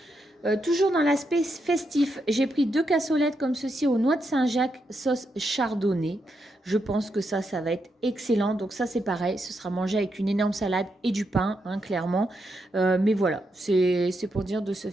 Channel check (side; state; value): both; normal; correlation 0.82